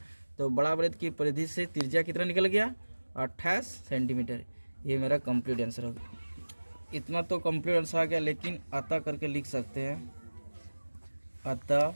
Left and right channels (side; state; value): both; inverted; correlation -1.00